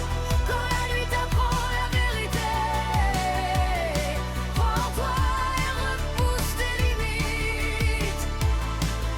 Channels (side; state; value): both; identical; correlation 1.00